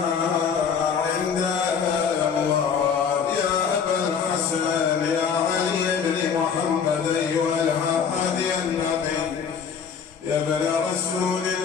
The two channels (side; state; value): right; quieter; 6.7 dB